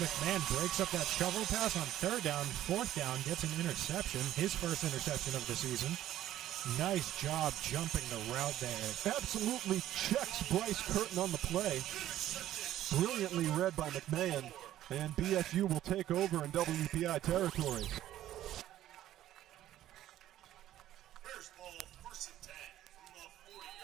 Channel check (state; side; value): quieter; left; 13.0 dB